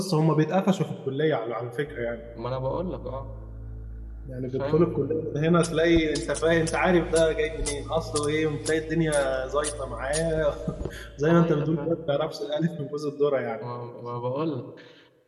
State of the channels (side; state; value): both; identical; correlation 1.00